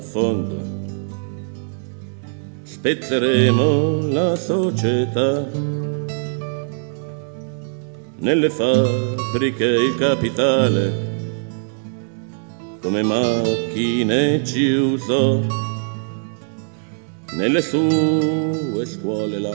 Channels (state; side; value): silent; left; digital silence